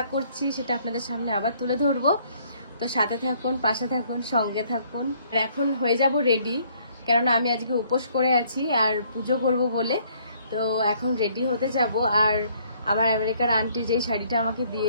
করছি সেটা আপনাদের সামনে আবার তুলে ধরবো। তো সাথে থাকুন, পাশে থাকুন, সঙ্গে থাকুন। আর এখন হয়ে যাব রেডি, কেননা আমি আজকে উপোস করে আছি আর পুজো করব বলে। তো এখন রেডি হতে যাব। আর আমার আমেরিকার আন্টি যেই শাড়িটা আমাকে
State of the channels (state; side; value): inverted; both; correlation -0.64